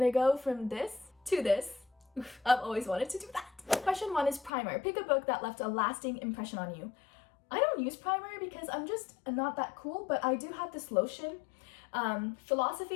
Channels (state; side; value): drops out; right; at 4.5 s